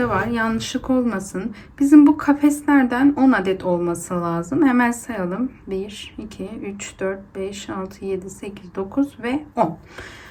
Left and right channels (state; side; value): identical; both; correlation 1.00